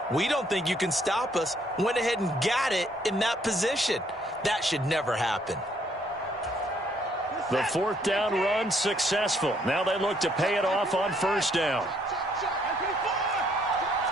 we don't think you can stop us. Went ahead and got it in that position. That should never happen. The 4th down run successful. Now they look to pay it off on first down.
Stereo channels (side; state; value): both; normal; correlation 0.67